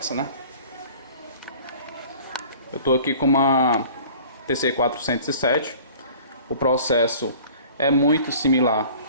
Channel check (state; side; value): inverted; both; correlation -0.47